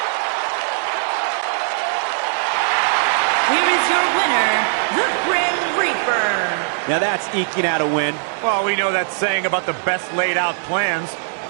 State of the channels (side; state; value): left; silent; digital silence